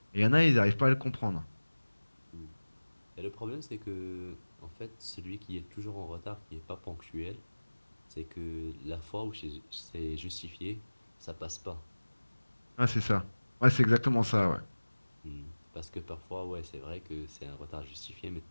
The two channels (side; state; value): both; inverted; correlation -1.00